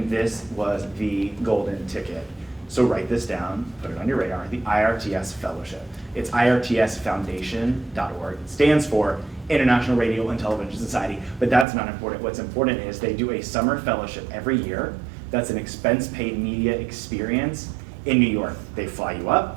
this was the golden ticket. So write this down, put it on your radar, the IRTS Fellowship. It's irtsfoundation.org. It stands for International Radio and Television Society, but that's not important. What's important is they do a summer fellowship every year. That's an expense-paid media experience in New York. They fly you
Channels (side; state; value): left; drops out; at 11.7 s